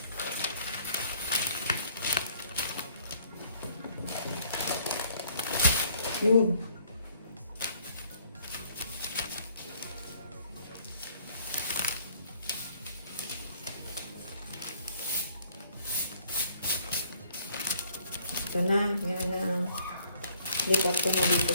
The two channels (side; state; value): both; inverted; correlation -0.60